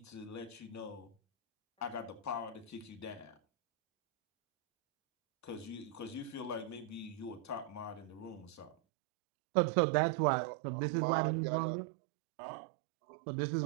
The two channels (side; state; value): left; drops out; at 8.8 s